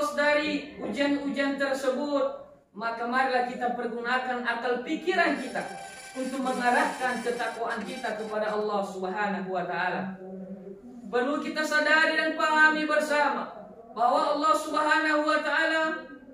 dari ujian-ujian tersebut, maka marilah kita pergunakan akal pikiran kita untuk mengarahkan ketakwaan kita kepada Allah Subhanahu wa taala. Perlu kita sadari dan pahami bersama bahwa Allah Subhanahu wa taala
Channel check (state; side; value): identical; both; correlation 1.00